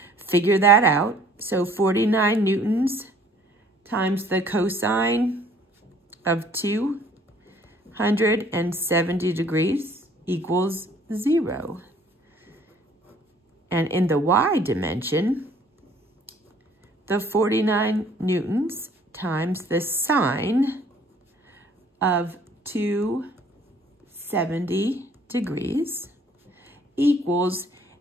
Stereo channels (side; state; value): both; normal; correlation 0.57